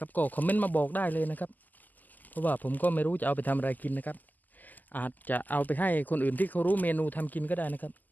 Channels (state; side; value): late; right; 0.083 ms